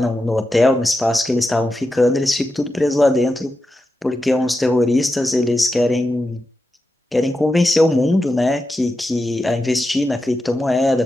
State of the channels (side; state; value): both; normal; correlation 0.89